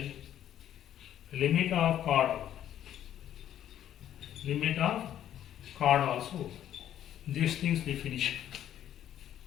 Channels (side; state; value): right; quieter; 11.1 dB